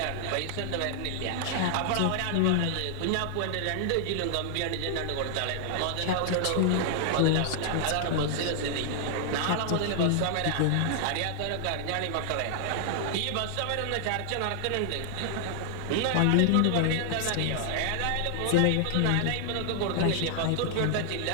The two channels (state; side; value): different; both; correlation 0.00